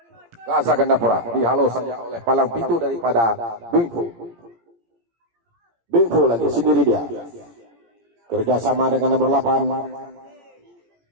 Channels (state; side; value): late; left; 17 ms